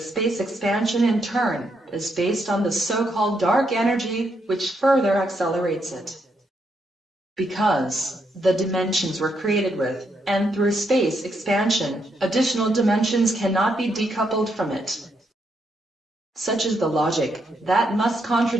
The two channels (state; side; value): normal; both; correlation 0.78